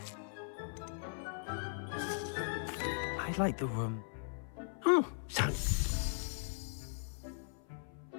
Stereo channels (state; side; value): silent; right; 52 dB below the other